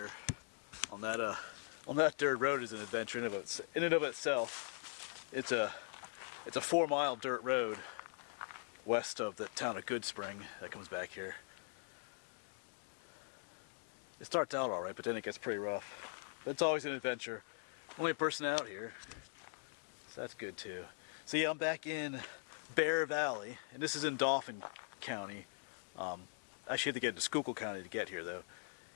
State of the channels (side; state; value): right; silent; digital silence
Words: on that dirt road is an adventure in and of itself. It's a 4-mile dirt road west of the town of Goodspring that comes back here. It starts out all right, but then it gets pretty rough. But it's always an adventure. Only a person out here, so that's good too. So yeah, I'm back in Bear Valley, and this is in Dauphin County. Actually, you have to get into Schuylkill County to get here, though.